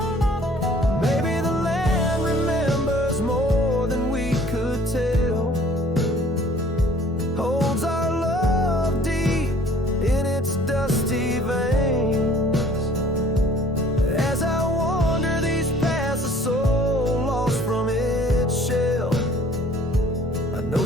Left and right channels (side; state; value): both; normal; correlation 0.54